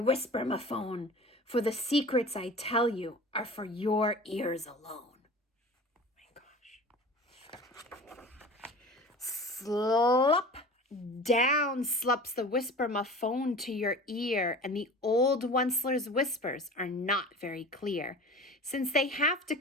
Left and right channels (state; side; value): normal; both; correlation 0.39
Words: for the secrets I tell you are for your ears alone. Slop down slops the whisper-ma-phone to your ear, and the old Onceler's whispers are not very clear, since they have to